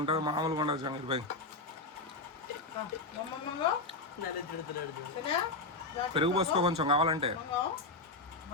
మామూలుగా ఉండదు. జహాంగీర్ భాయ్ పెరుగు పోసుకో కొంచెం కావాలంటే.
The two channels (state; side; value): quieter; right; 3.4 dB